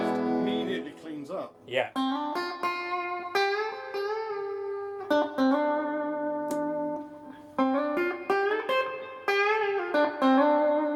Immediately cleans up. Yeah. Go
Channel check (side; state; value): both; identical; correlation 1.00